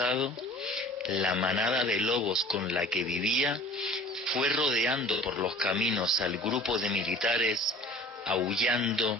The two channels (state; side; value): normal; both; correlation 0.46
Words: la manada de lobos con la que vivía fue rodeando por los caminos al grupo de militares,